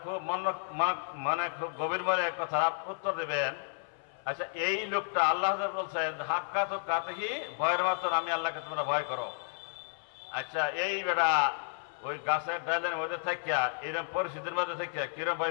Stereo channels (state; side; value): silent; right; 56 dB below the other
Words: খুব মানে খুব গভীর মনে কথা উত্তর দেবেন। আচ্ছা, এই লোকটা আল্লাহ বলছেন হাক্কা তো কাতেহি, ভয়ের মতন আমি আল্লাহকে তোমরা ভয় করো। আচ্ছা, এই বেটা ওই গাছের ডালের মধ্যে থাকিয়া এরকম পরিস্থিতির মধ্যে থাকিয়া কিরম ভয়